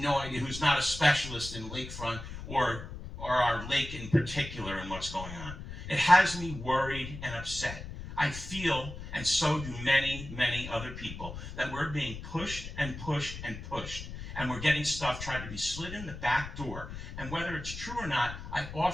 idea, who's not a specialist in lakefront or our lake in particular and what's going on? It has me worried and upset. I feel, and so do many, many other people, that we're being pushed and pushed and pushed. And we're getting stuff tried to be slid in the back door. And whether it's true or not, I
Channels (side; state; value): left; noise; rumble, 10 dB below the sound